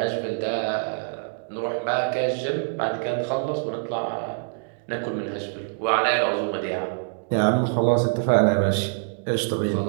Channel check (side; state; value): left; silent; digital silence